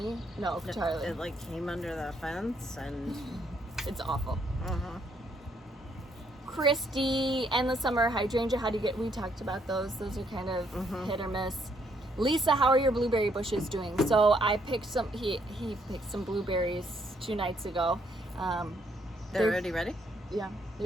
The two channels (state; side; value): normal; both; correlation 0.71